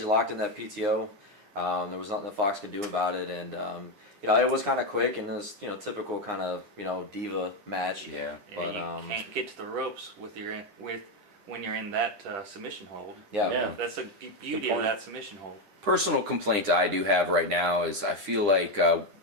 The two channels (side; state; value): left; late; 9.8 ms